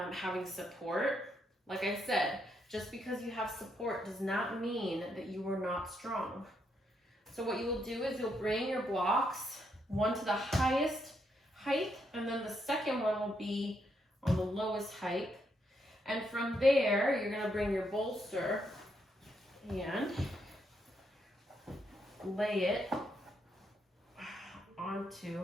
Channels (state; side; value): normal; both; correlation 0.78